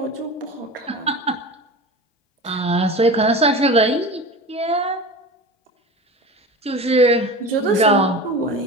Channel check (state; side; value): normal; both; correlation 0.32